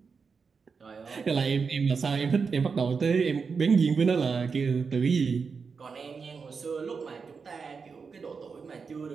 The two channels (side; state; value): left; quieter; 5.3 dB